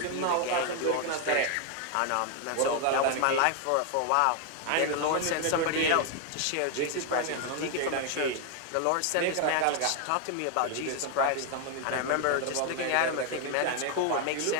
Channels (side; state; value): both; different; correlation 0.00